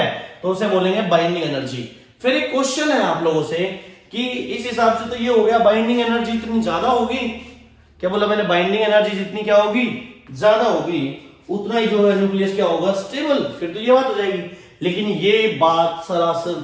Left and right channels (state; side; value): identical; both; correlation 1.00